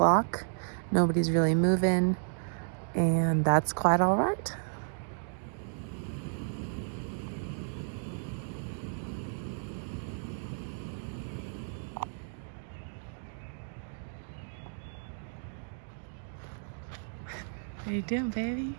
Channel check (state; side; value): silent; left; digital silence